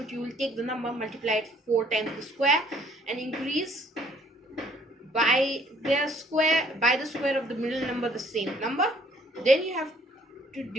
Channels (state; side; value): normal; both; correlation 0.60